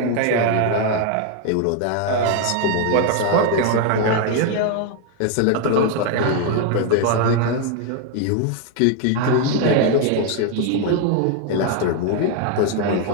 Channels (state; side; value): different; both; correlation 0.01